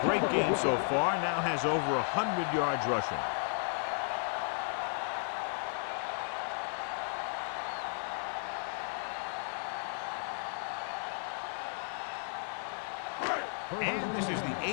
great game so far, now has over 100 yards rushing. And this is the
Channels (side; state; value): right; silent; 55 dB below the other